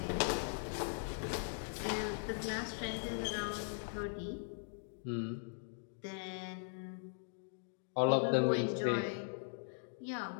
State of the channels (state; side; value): silent; right; digital silence